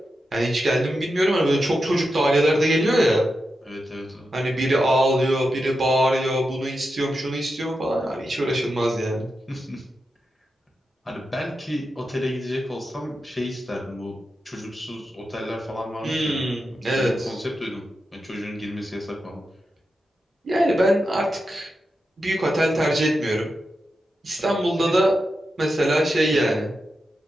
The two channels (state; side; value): normal; both; correlation 0.89